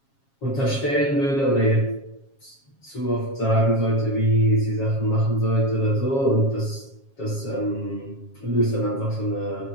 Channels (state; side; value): late; right; 7.3 ms